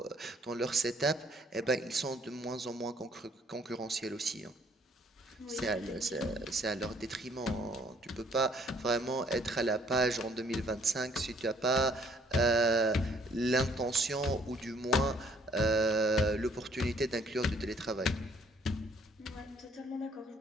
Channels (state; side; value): normal; both; correlation 0.62